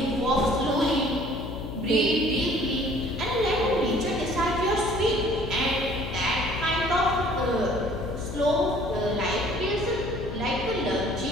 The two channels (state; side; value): noise; left; hum, 8 dB below the sound